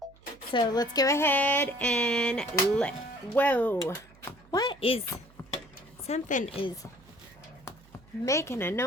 So let's go ahead and whoa. What is, something is making a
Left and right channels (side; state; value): right; noise; hum, 27 dB below the sound